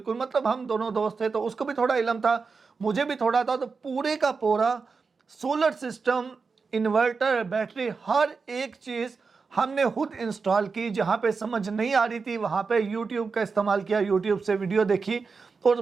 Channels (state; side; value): quieter; left; 4.8 dB